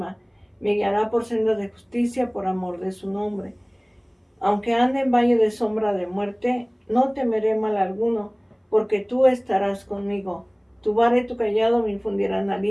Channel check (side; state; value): both; identical; correlation 1.00